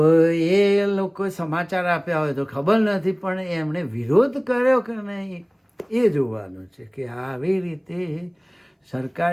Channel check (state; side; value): identical; both; correlation 1.00